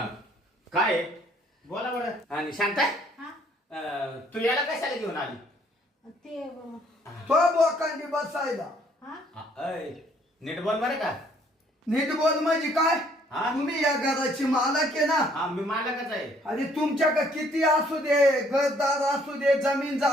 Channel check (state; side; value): normal; both; correlation 0.63